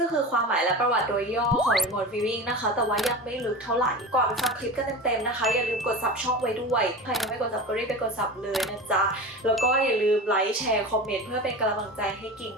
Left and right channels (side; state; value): both; normal; correlation 0.30